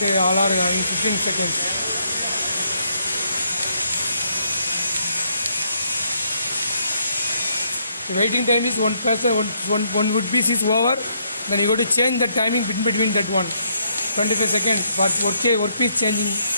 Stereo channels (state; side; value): inverted; both; correlation -0.73